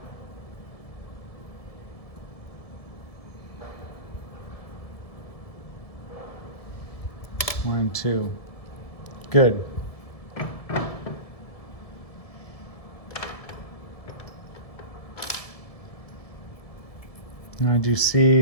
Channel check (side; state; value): right; late; 1.7 ms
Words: One, 2. Good. Now I do see